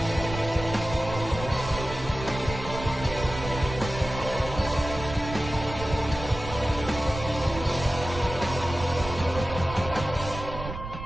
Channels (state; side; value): noise; right; rumble, 9 dB below the sound